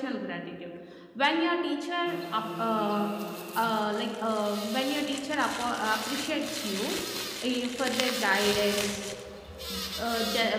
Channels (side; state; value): both; identical; correlation 1.00